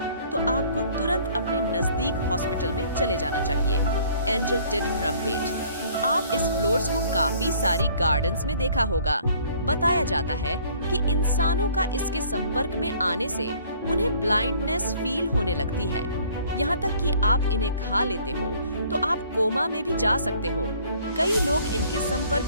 तो आपको तुरंत अपने नजदीक हॉस्पिटल में चले जाना चाहिए। एंजल टिड रम्पेट, आप इस फ्लोर्स को काफी सारी गार्डन्स में देखा होगा। बताया जाता है कि इंसानों का इसके संपर्क में आने से उन्हें ब्लाइंडनेस फील होने लगती है, यहाँ तक कि आप इन्हें खा लेते हो तो आप कोमा में भी जा सकते हो। कई लोग इनके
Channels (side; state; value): both; inverted; correlation -0.56